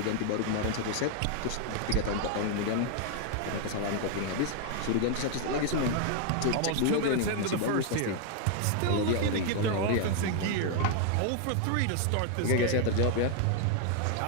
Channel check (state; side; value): different; both; correlation 0.00